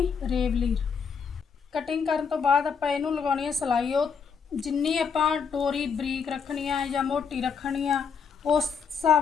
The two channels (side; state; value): right; quieter; 6.3 dB